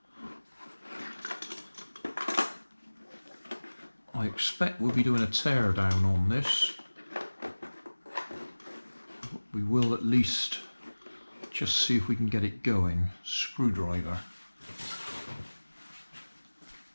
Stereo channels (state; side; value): inverted; both; correlation -1.00